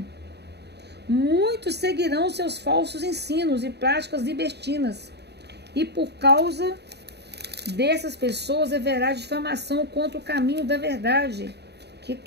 Muitos seguirão seus falsos ensinos e práticas libertinas, e por causa dessas pessoas haverá difamação contra o caminho da verdade, que é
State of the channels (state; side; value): late; left; 0.48 ms